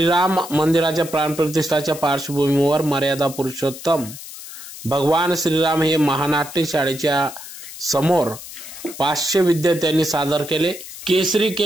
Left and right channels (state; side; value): noise; left; hiss, 13 dB below the sound